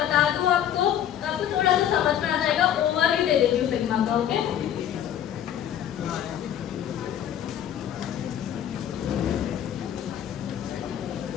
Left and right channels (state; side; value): quieter; right; 10.3 dB